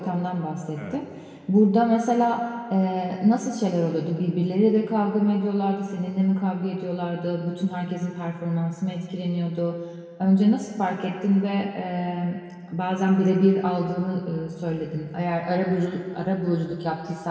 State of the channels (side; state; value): both; identical; correlation 1.00